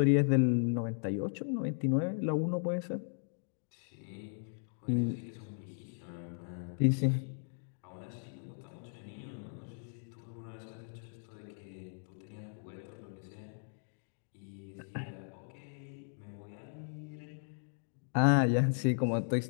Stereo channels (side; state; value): right; silent; digital silence